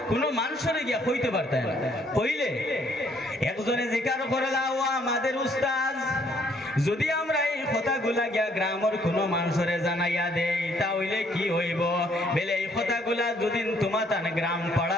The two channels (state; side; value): normal; both; correlation 0.66